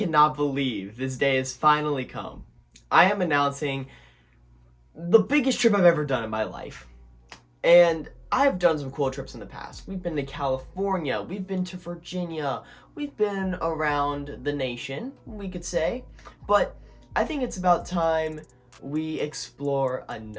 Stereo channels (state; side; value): identical; both; correlation 1.00